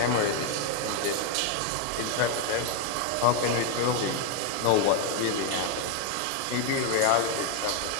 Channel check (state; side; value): different; both; correlation 0.01